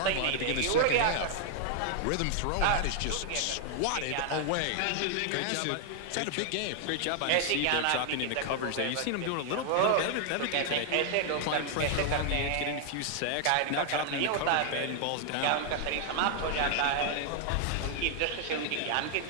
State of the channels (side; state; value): both; different; correlation 0.00